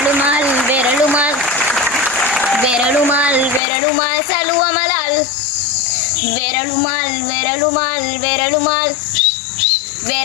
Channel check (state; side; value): drops out; right; at 3.6 s